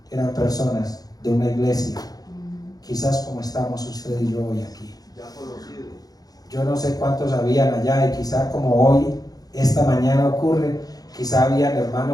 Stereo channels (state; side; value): late; right; 0.18 ms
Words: eran personas de una iglesia, quizás como estamos usted y yo hoy aquí. Yo no sé cuántos habían allá, y quizá como hoy, esta mañana ocurre, quizá habían